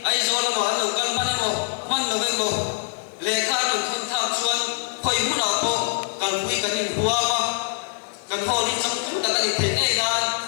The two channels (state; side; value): silent; right; 56 dB below the other